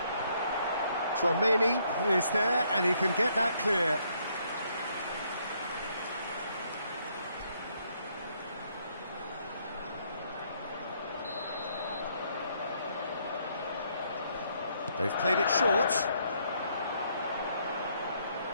Tchouameni is there, and he can get that clear. They've played it short.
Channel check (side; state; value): both; inverted; correlation -0.70